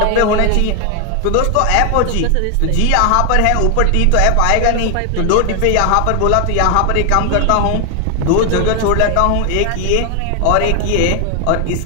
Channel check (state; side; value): different; both; correlation 0.00